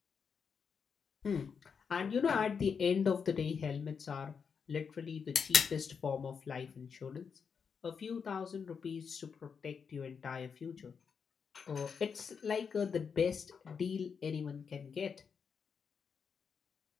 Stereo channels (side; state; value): right; quieter; 6.2 dB